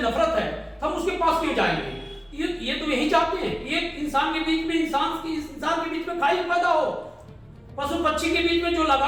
नफरत है, हम उसके पास क्यों जाएंगे? ये तो यही चाहते हैं कि एक इंसान के बीच में इंसान के बीच में खाई पैदा हो, पशु पक्षी के बीच में जो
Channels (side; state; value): both; identical; correlation 1.00